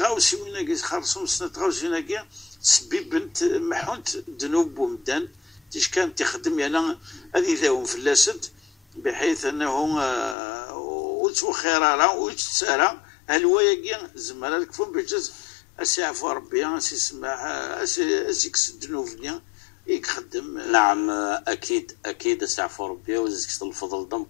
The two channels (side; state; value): right; drops out; at 10.4 s